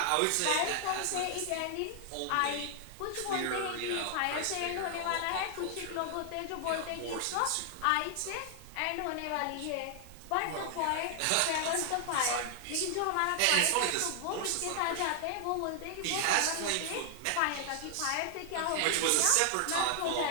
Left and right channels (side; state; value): both; different; correlation 0.00